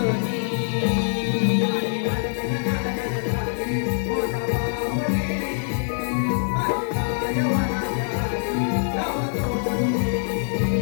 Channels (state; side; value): silent; right; digital silence